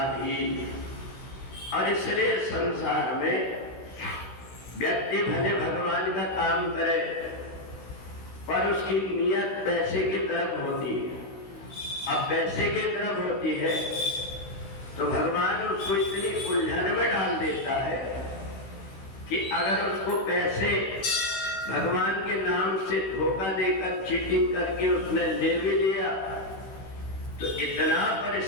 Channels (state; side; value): late; right; 16 ms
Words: और इसलिए संसार में व्यक्ति भले भगवान का काम करे पर उसकी नियत पैसे की तरफ होती है। अब पैसे की तरफ होती है तो भगवान उसको इतनी उलझन में डाल देता है कि अगर उसको पैसे भगवान के नाम से धोखा देकर चीटिंग करके उसने ले भी लिया तो इतना